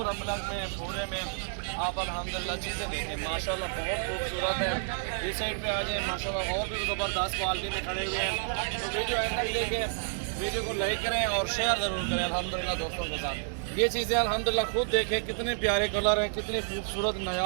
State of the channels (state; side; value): silent; left; digital silence